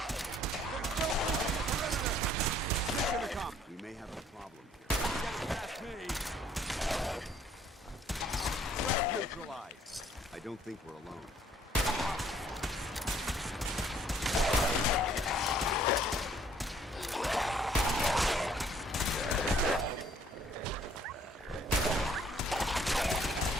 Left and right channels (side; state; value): both; normal; correlation 0.61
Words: We may have a problem here. Past me! Neutralized. I don't think we're alone.